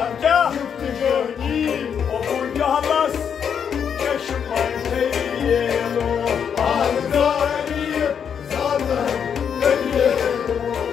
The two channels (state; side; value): quieter; right; 7.6 dB